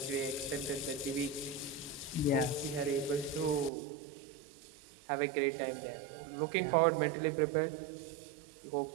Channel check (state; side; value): drops out; left; at 3.7 s